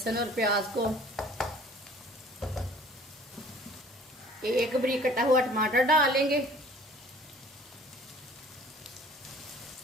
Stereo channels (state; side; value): normal; both; correlation 0.51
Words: और प्याज को। एक बारीक कटा हुआ टमाटर डालेंगे।